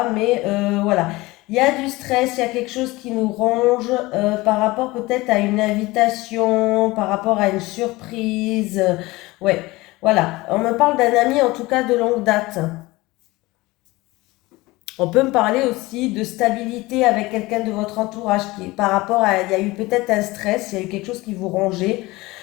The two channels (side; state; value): right; quieter; 20.8 dB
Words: mais voilà. Il y a du stress, il y a quelque chose qui nous ronge par rapport peut-être à une invitation, par rapport à une surprise. Ouais, voilà. On me parle d'un ami, en tout cas, de longue date. On peut me parler aussi de stabilité avec quelqu'un de votre entourage qui, par rapport à, il y a eu peut-être un stress, il y a eu quelque chose qui vous rongeait,